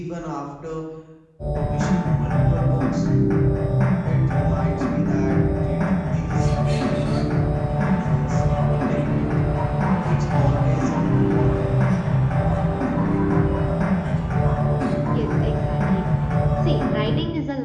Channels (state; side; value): identical; both; correlation 1.00